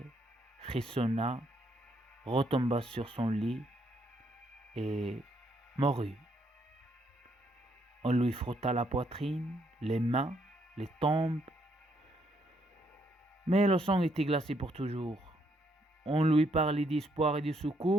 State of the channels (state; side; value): normal; both; correlation 0.73